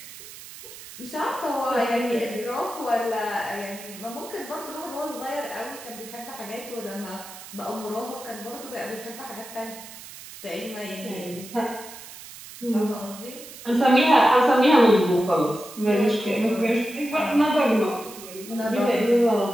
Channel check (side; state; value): right; noise; hiss, 15 dB below the sound